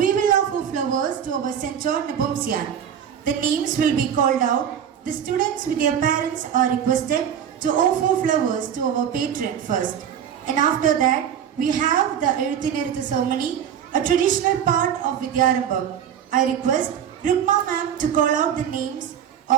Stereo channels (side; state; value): left; quieter; 8.8 dB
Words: will offer flowers to our St. John Nepomucene. The names will be called out. The students with their parents are requested to offer flowers to our patron first. And after that, we have the Eruthinerithu ceremony, a traditional part of Vidyarambam. I request Rukma ma'am to call out the names